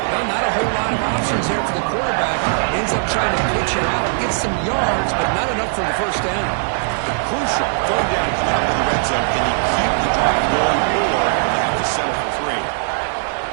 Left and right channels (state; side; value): silent; left; digital silence